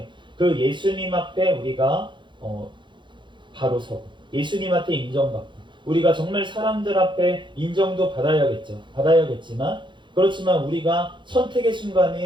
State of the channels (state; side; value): late; left; 0.23 ms